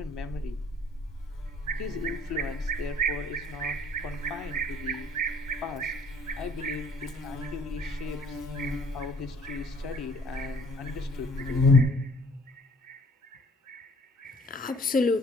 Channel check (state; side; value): normal; both; correlation 0.58